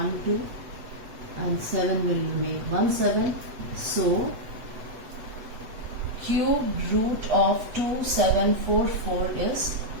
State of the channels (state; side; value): late; left; 8.0 ms